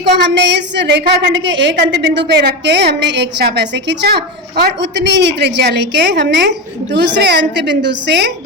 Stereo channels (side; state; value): both; normal; correlation 0.17